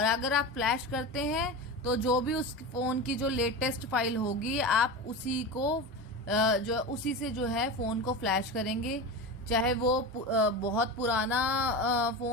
अगर आप फ्लैश करते हैं तो जो भी उस फोन की जो लेटेस्ट फाइल होगी आप उसी को उसी से जो है फोन को फ्लैश करेंगे, चाहे वो बहुत पुराना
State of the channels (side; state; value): both; normal; correlation 0.25